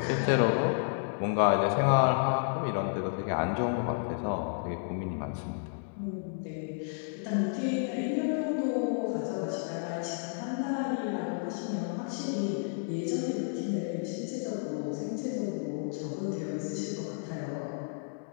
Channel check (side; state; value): right; silent; digital silence